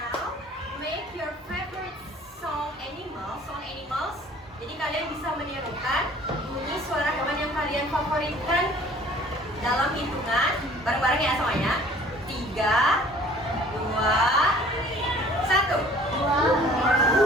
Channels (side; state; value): both; normal; correlation 0.52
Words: memberikan dalam hitungan bareng-bareng ya semuanya. 3, 2, 1.